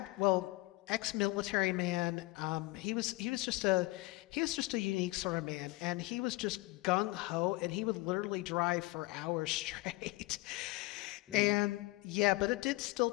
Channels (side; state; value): right; quieter; 21.6 dB